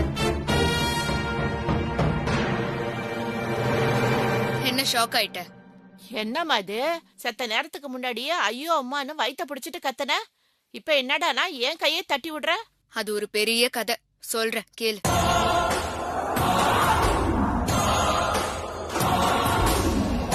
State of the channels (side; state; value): both; identical; correlation 1.00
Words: ஷாக் ஆயிட்ட? என்னம்மா இது? செத்த நேரத்துக்கு முன்னாடியே ஐயோ அம்மான்னு வயித்த பிடிச்சிட்டு கத்தன, இப்ப என்னடானா என் கையை தட்டி விடுற? அது ஒரு பெரிய கதை, சொல்றேன் கேளு.